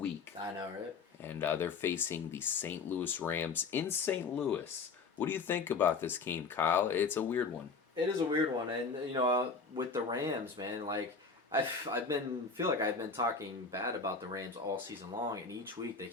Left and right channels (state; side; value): quieter; right; 4.8 dB